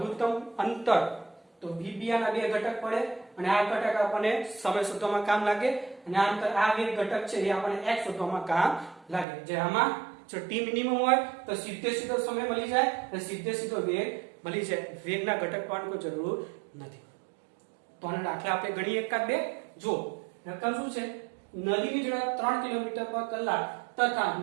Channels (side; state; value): left; drops out; at 9.2 s